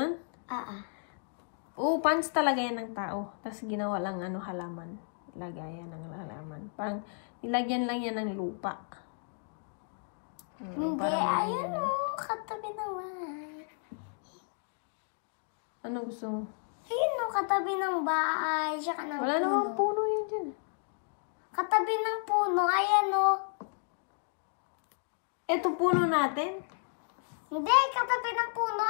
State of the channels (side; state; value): right; silent; 56 dB below the other